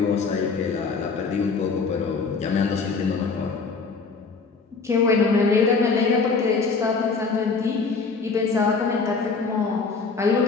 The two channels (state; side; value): quieter; right; 4.6 dB